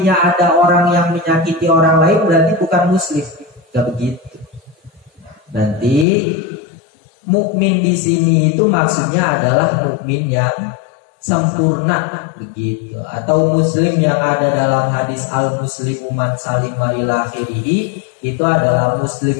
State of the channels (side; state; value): right; drops out; at 6.1 s